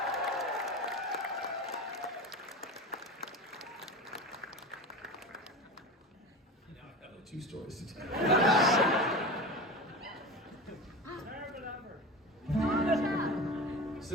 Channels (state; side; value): normal; both; correlation 0.30